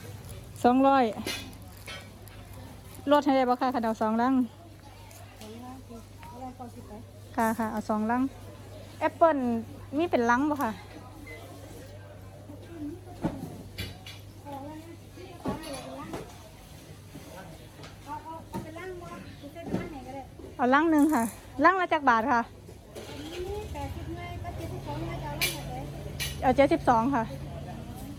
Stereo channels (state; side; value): identical; both; correlation 1.00